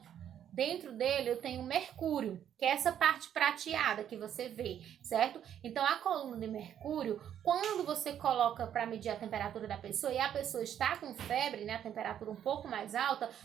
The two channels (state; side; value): quieter; left; 9.9 dB